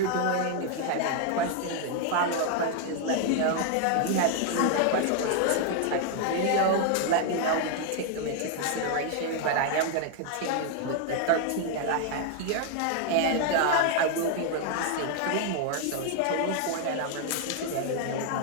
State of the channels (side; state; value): both; different; correlation 0.00